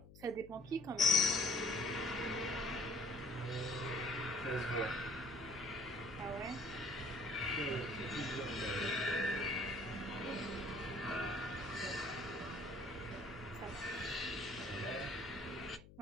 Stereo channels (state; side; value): noise; left; hum, 19 dB below the sound